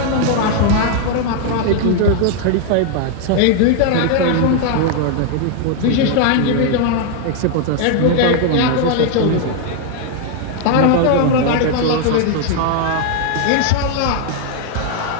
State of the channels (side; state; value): both; different; correlation 0.00